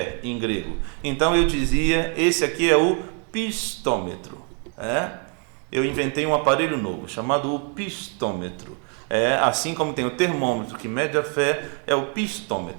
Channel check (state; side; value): quieter; left; 40.0 dB